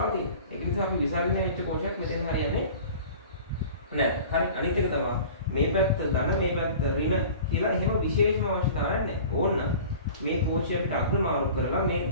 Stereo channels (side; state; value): both; inverted; correlation -0.42